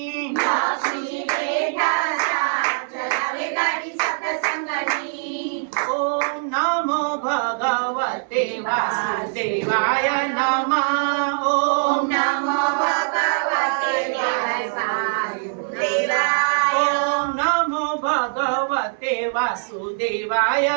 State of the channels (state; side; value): silent; left; 64 dB below the other